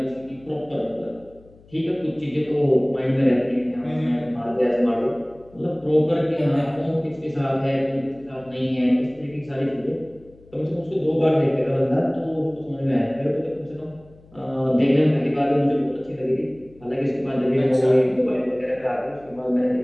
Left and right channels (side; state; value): left; noise; hum, 26 dB below the sound